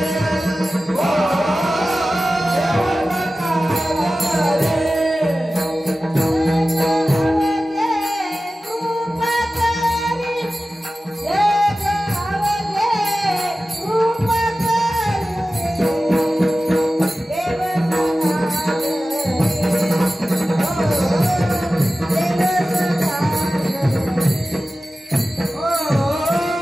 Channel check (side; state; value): both; normal; correlation 0.95